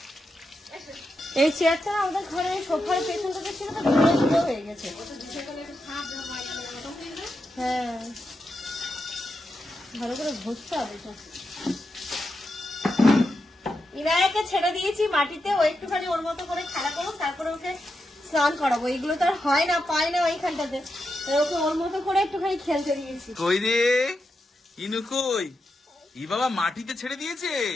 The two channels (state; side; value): normal; both; correlation 0.87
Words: এই চেয়ারটা আমাদের ঘরে সোফার পেছনটাতে ছিল, তো ধুলো ধুলো হয়ে গেছে। হ্যাঁ, ভালো করে ঘষতে হবে। ইনায়াকে ছেড়ে দিয়েছি মাটিতে, ও একটুখানি ওর মতো করে খেলা করুক, তারপরে ওকে স্নান করাবো। এগুলো তো আর হয় না, পায় না ওইখানটাতে, ওকে ওর মতো করে একটুখানি খেলতে দিয়েছি। কই রে ইনু কই? ই বাবা মাটিতে ছেড়ে দিয়েছে।